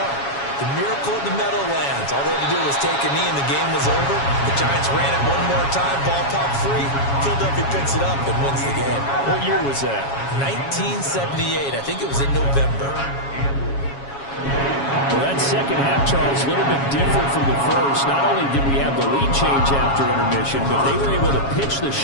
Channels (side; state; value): right; late; 7.2 ms